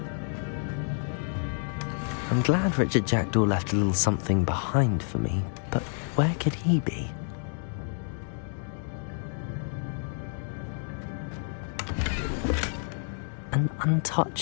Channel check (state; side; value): silent; right; 57 dB below the other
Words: I'm glad Richard Jackdaw left a little something behind for me, but where could he be? An